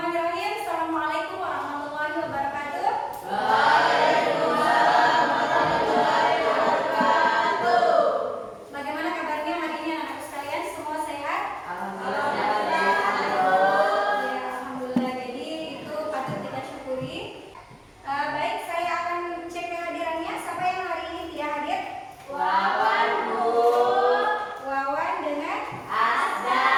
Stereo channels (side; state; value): both; identical; correlation 1.00